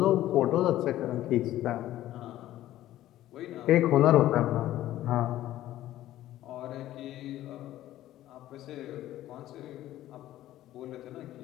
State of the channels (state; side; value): quieter; right; 14.0 dB